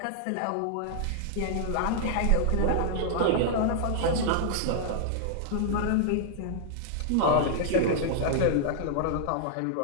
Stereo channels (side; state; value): both; different; correlation -0.01